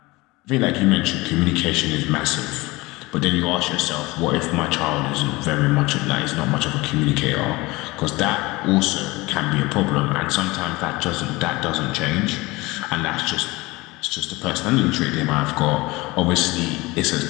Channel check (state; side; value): quieter; right; 21.9 dB